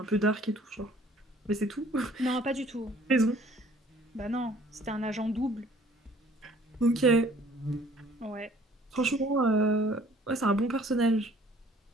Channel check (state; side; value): normal; both; correlation 0.56